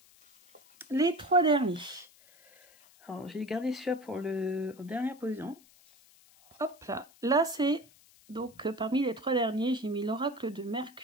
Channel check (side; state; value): left; noise; hiss, 27 dB below the sound